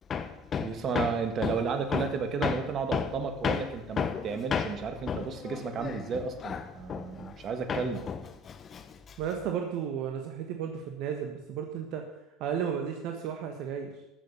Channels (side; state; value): both; normal; correlation 0.51